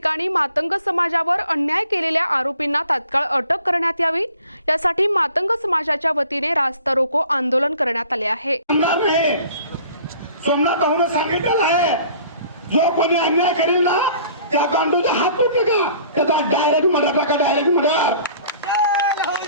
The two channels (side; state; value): both; inverted; correlation -0.52